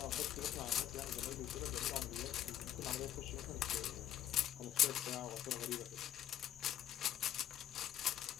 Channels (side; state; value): right; quieter; 11.4 dB